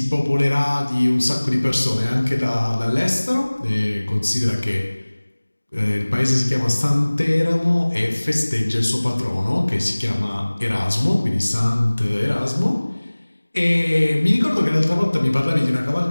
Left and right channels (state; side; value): inverted; both; correlation -1.00